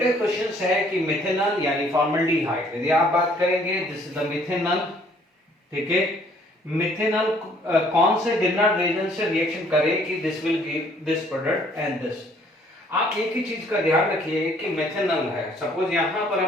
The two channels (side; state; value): both; normal; correlation 0.61